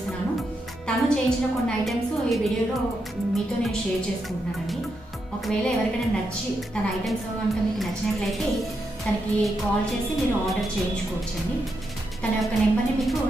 తను చేయించిన కొన్ని ఐటమ్స్ ఈ వీడియోలో మీతో నేను షేర్ చేసుకుంటున్నానండి. ఒకవేళ ఎవరికైనా నచ్చి తన ఐటమ్స్ కనుక మీకు నచ్చినట్లయితే తనకి కాల్ చేసి మీరు ఆర్డర్ చేయించుకోవచ్చండి. తన యొక్క నెంబర్ని మీకు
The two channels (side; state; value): both; normal; correlation 0.83